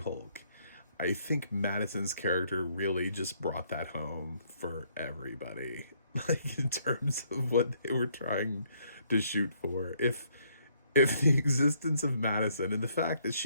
I think Madison's character really just brought that home for everybody. Like, in terms of what they were trying to shoot for. If the existence of Madison and the fact that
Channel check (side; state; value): both; inverted; correlation -0.68